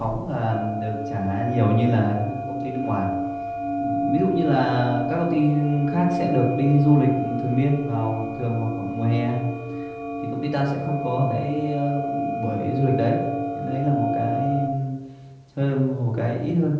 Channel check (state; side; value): identical; both; correlation 1.00